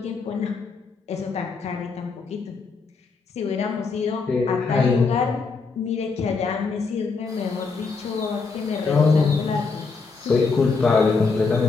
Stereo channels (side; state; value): right; quieter; 4.6 dB